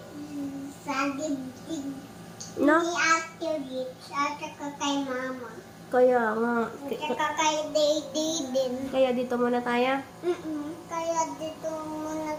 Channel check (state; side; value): identical; both; correlation 1.00